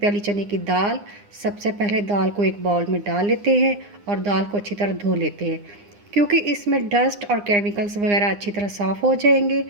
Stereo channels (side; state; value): left; late; 9.8 ms